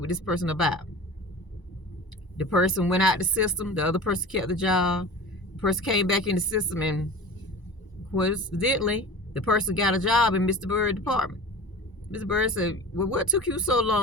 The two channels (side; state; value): right; late; 1.0 ms